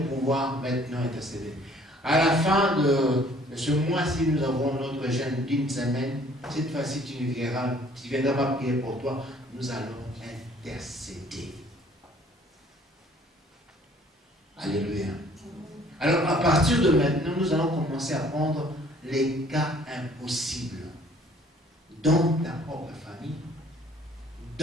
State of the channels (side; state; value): both; normal; correlation 0.57